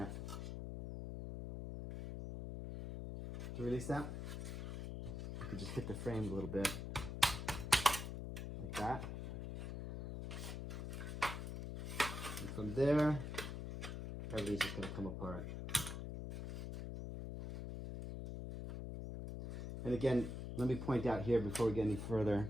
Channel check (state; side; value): noise; left; hum, 5 dB below the sound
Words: you could just hit the frame a little bit, like that. And from there, everything's just going to come apart. And again, let me point out here before we get any further,